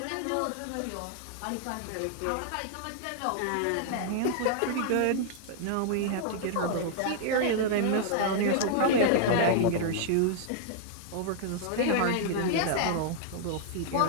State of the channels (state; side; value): different; both; correlation -0.01